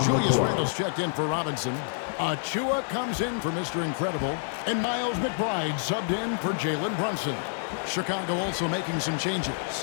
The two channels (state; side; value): silent; right; 60 dB below the other